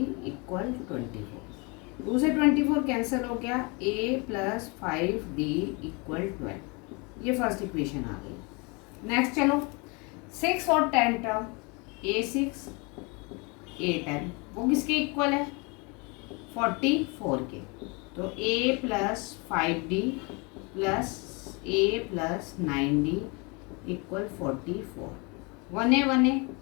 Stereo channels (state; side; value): quieter; right; 29.9 dB